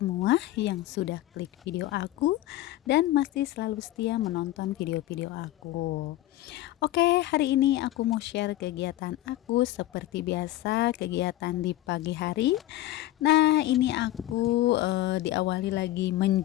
yang sudah klik video aku dan masih selalu setia menonton video-video aku. Oke, hari ini aku mau share kegiatan aku seperti biasa, kegiatan di pagi hari. Nah, ini aku diawali lagi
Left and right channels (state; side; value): quieter; right; 15.4 dB